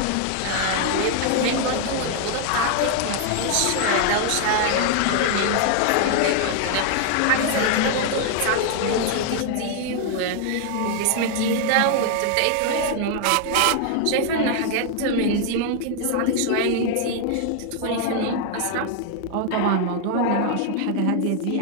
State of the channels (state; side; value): different; both; correlation 0.00